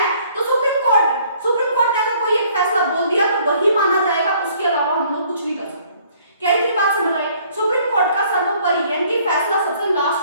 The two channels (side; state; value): both; inverted; correlation -0.60